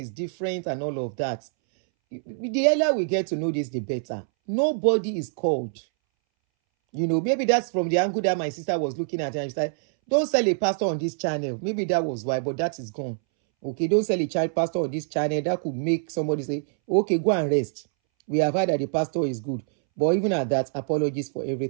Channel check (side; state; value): left; silent; 62 dB below the other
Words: different and all of that. The earlier we get to know this, the better. Nobody is called. You know, maybe that's from the angle that my sister was looking at. And she said, don't sell a pastor on this channel. Maybe that was why, but that is gone. Okay, don't sell a child pastor on this channel. That could make somebody say, okay, go and rest. We have heard that the pastor is good. But even at that, apologies for